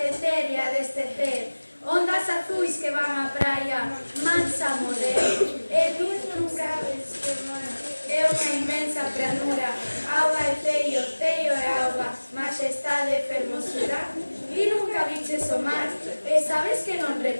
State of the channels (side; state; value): both; inverted; correlation -1.00